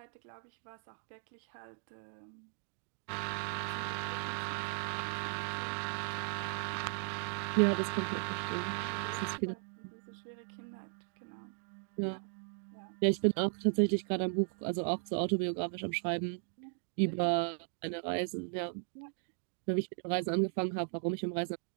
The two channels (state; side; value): silent; left; digital silence